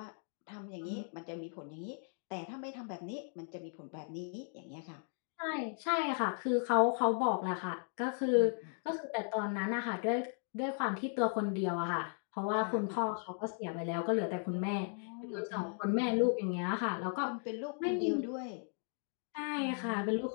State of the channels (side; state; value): right; silent; 53 dB below the other